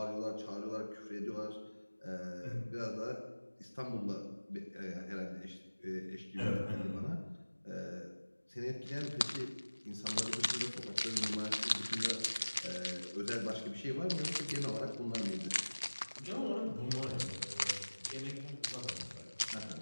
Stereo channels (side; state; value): both; inverted; correlation -1.00